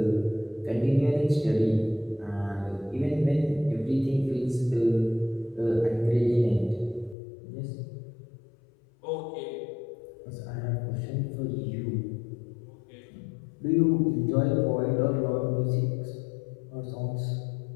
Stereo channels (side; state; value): right; drops out; at 7.2 s